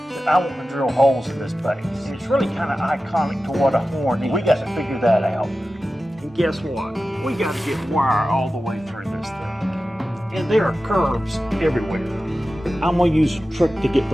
I want to drill holes in this base. It's really kind of iconic to what a horn is. We got to figure that out. And guess what? We got to get wire all the way through this thing. And there are curves everywhere. I'm going to use a trick to get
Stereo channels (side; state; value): both; normal; correlation 0.94